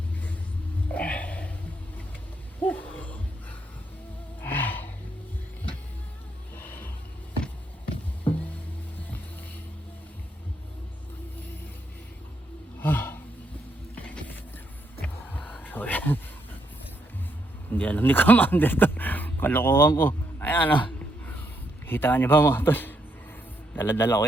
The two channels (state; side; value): normal; both; correlation 0.77